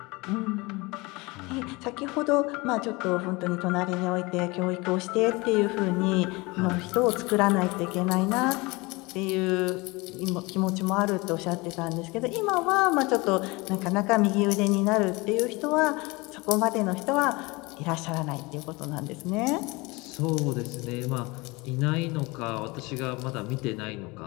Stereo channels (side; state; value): right; quieter; 24.4 dB